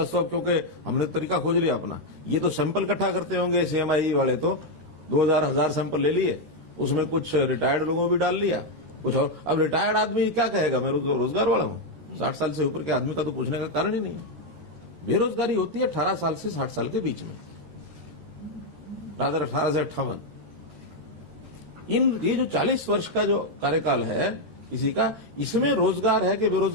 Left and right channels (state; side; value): late; left; 13 ms